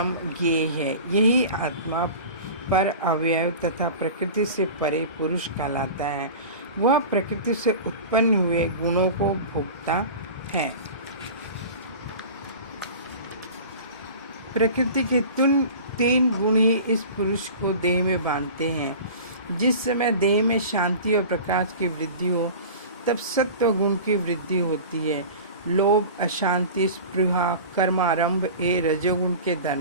ज्ञेय है। यही आत्मा पर अवयव तथा प्रकृति से परे पुरुष कहलाता है। वह प्रकृति से उत्पन्न हुए गुणों को भोगता है। प्रकृति के तीन गुण ही इस पुरुष को देह में बांधते हैं। जिस समय देह में शांति और प्रकाश की वृद्धि हो, तब सत्व गुण की वृद्धि होती है। लोभ, अशांति, स्पृहा, कर्मारंभ ये रजोगुण के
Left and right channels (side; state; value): both; inverted; correlation -0.36